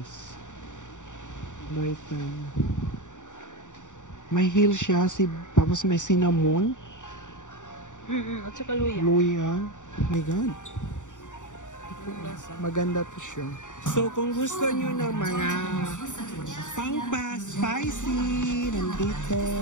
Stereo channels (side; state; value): right; late; 0.86 ms